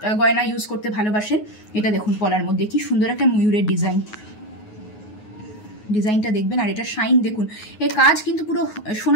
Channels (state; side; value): late; right; 9.5 ms